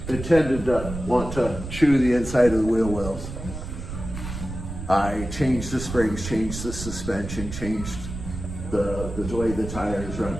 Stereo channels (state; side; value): noise; right; rumble, 8 dB below the sound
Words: it tended to want to chew the inside of the wheel wells. I changed the springs, changed the suspension, changed the way the tires run.